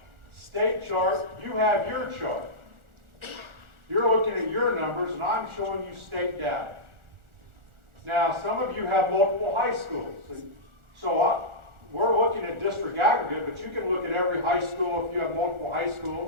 State chart, you have your chart. You're looking at your numbers, and I'm showing you state data. Now, some of you have multiple high schools. So we're looking at district aggregate, but you can look at every high school if you have multiple high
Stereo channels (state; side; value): late; left; 1.4 ms